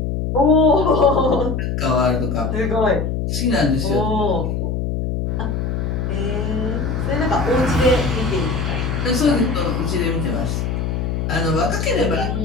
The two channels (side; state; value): left; noise; hum, 1 dB below the sound